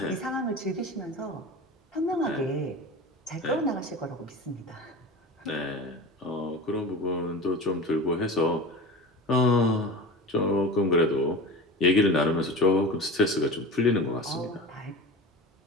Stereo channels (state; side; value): normal; both; correlation 0.32